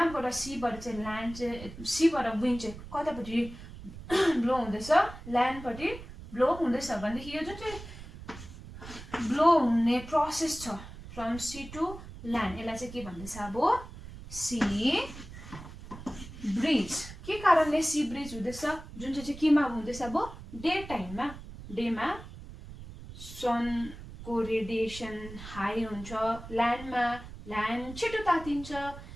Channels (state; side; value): noise; right; rumble, 14 dB below the sound